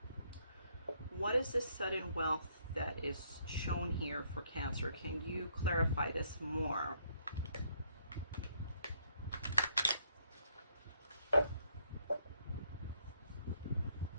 What is this sudden wealth that is shown here for Cancer? Can you clarify this more?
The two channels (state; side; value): inverted; both; correlation -0.69